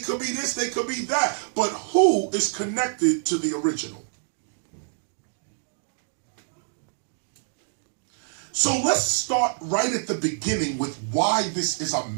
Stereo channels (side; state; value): left; silent; digital silence